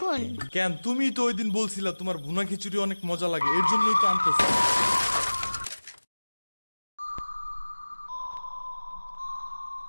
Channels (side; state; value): both; inverted; correlation -1.00